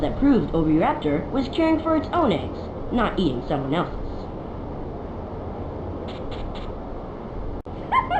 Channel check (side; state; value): both; identical; correlation 1.00